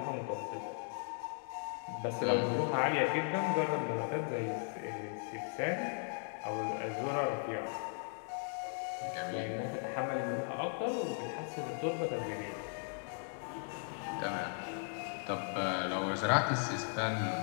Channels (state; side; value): silent; right; 53 dB below the other